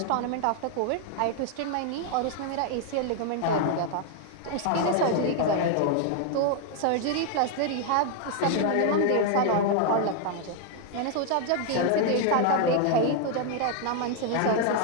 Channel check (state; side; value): different; both; correlation 0.00